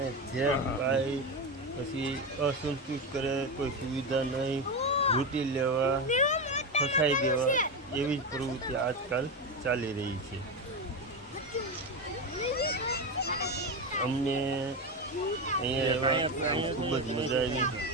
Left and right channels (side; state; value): both; normal; correlation 0.15